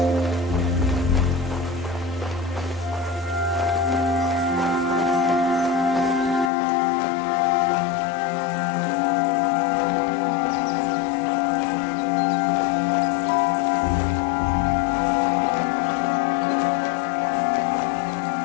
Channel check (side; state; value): right; drops out; at 6.5 s